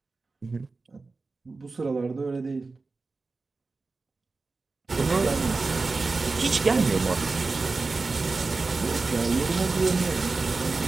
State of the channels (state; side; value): quieter; left; 3.8 dB